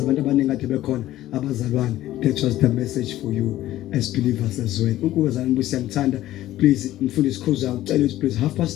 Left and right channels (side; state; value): right; quieter; 14.5 dB